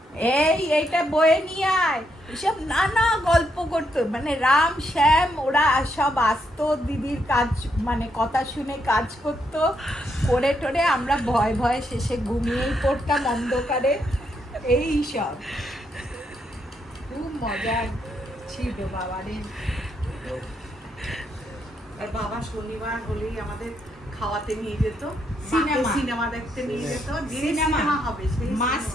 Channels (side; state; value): both; normal; correlation 0.78